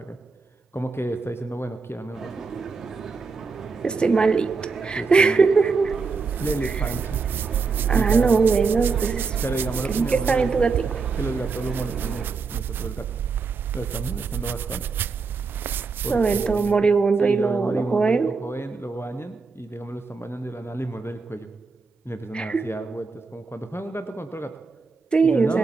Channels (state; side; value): quieter; left; 4.6 dB